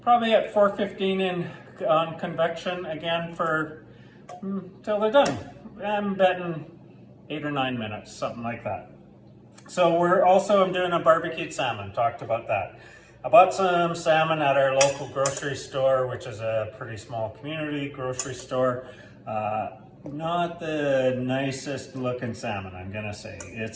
probably at 415 on convection again for till they're done. I'm betting 8 or 9 minutes, something like that. So I'm doing a barbecued salmon, talked about that. I bought some salmon at our local grocery store, which is a pretty small community grocery store. Not the nicest looking salmon, I'm gonna say.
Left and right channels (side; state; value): both; identical; correlation 1.00